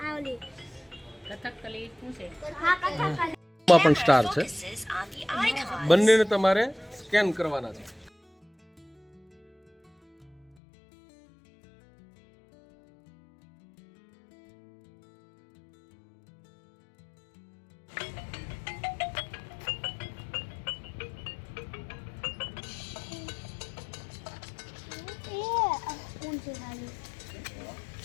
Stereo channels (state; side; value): drops out; right; at 10.5 s